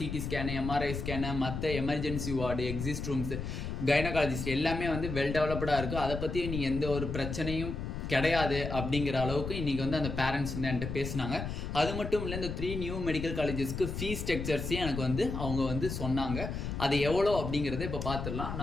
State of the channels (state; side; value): noise; left; rumble, 5 dB below the sound